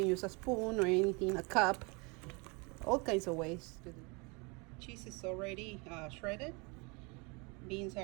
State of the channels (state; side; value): quieter; left; 29.8 dB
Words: use a spoon or anything, a cup, all kinds of ways to do. Cheese is already shredded, beans